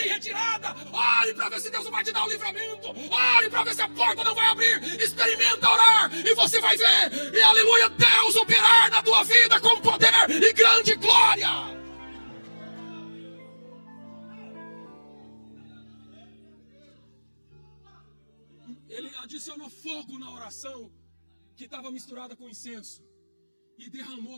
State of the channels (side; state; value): both; inverted; correlation -1.00